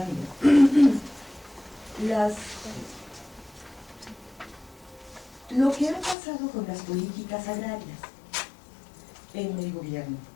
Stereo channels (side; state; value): right; drops out; at 6.2 s